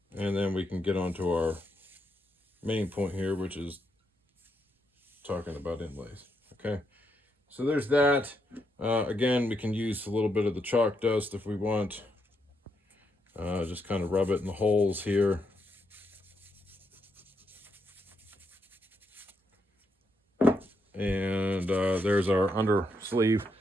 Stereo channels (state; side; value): normal; both; correlation 0.79